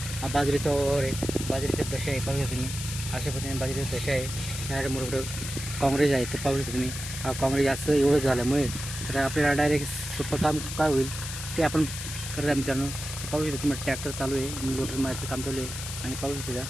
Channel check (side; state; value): left; noise; hiss, 7 dB below the sound